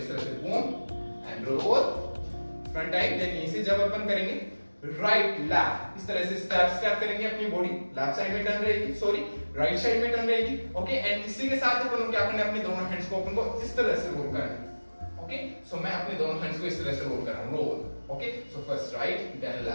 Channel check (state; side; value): inverted; both; correlation -1.00